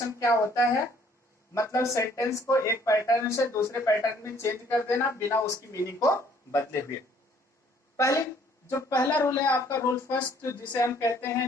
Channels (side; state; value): both; normal; correlation 0.61